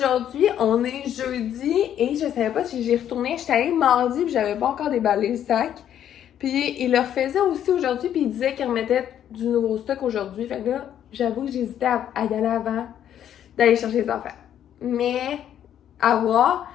on est jeudi et je savais pas si j'ai retourné. J'étais allée mardi puis j'avais pas encore déballé le sac. Puis il le refaisait aussi aujourd'hui puis il disait qu'il remettait du nouveau stock aujourd'hui. Fait que là, j'avoue que j'hésitais à y aller avant d'aller chercher les affaires. Mais à voir.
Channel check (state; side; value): quieter; right; 10.3 dB